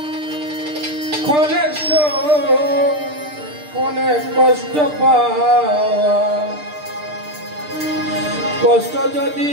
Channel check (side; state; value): left; late; 6.7 ms